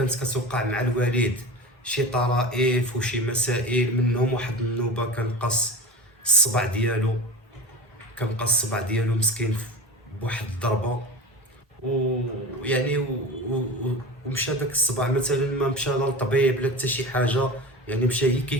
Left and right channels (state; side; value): normal; both; correlation 0.31